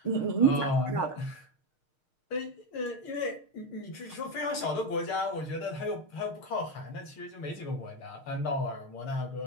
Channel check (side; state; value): right; late; 6.5 ms